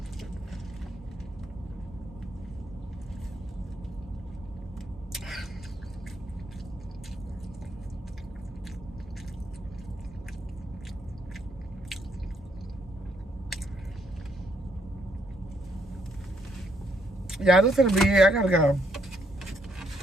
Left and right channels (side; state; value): both; normal; correlation 0.73